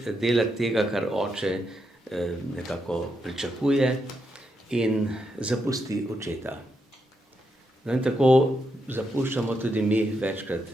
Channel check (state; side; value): normal; both; correlation 0.82